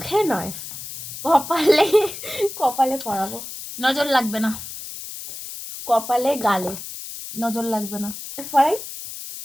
নয়, কপালে, কপালে পরাবো। নজর লাগবে না, কপালে, গালে নজর লাগবে না। পরাই।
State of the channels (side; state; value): left; noise; hiss, 10 dB below the sound